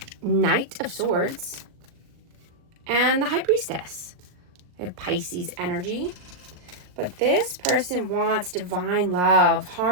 Knight of Swords, and the High Priestess. I have Pisces energy, but this person wants divine love,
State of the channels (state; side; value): late; left; 39 ms